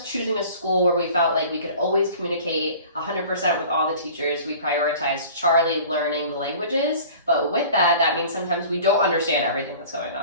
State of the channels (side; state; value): both; inverted; correlation -0.44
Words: choosing a school where we felt like we could always communicate 100% with all the teachers, we prioritized Charlie learning the languages. But with that, that means sometimes we don't understand everything that's going